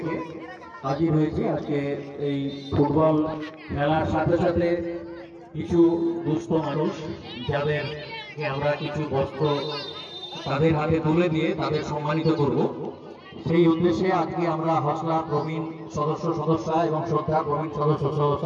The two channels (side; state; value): both; identical; correlation 1.00